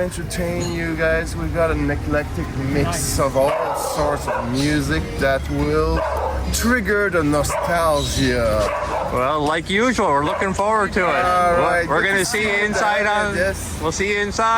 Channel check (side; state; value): both; identical; correlation 1.00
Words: you guys. We've got an eclectic mix of all sorts of music that will trigger the nostalgia. Well, like usual, we're looking forward to it. All right, we're going to see you inside on. Yes. We'll see you